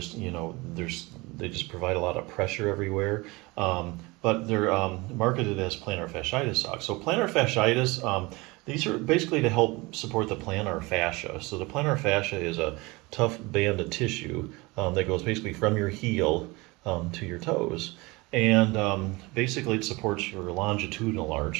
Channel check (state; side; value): quieter; left; 23.9 dB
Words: they just provide a lot of pressure everywhere. But they're marketed as plantar fasciitis socks. So plantar fasciitis, these are basically to help support the plantar fascia. So the plantar fascia is a tough band of tissue that goes basically from your heel to your toes. And basically it supports your longitudinal